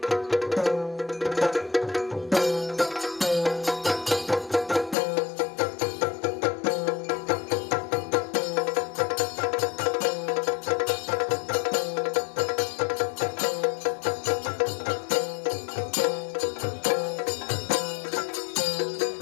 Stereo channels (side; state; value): right; drops out; at 5.0 s